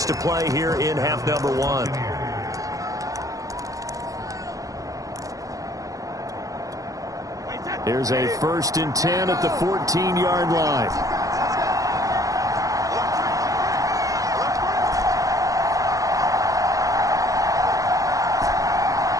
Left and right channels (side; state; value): left; late; 0.17 ms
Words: to play here in half number 1. Here's a 1st and 10 at the 14-yard line.